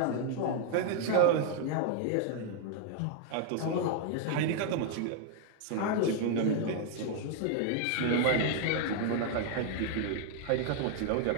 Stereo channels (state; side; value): different; both; correlation 0.00